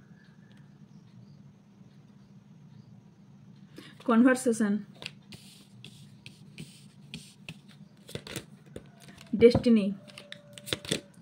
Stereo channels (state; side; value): identical; both; correlation 1.00